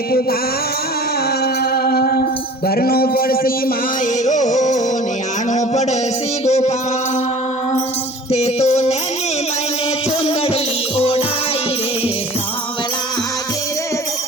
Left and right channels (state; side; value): normal; both; correlation 0.44